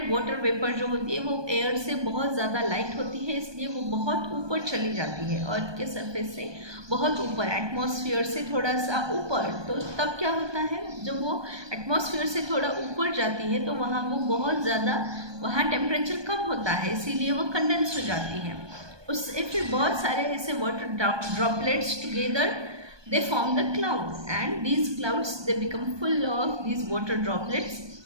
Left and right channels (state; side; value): late; left; 1.2 ms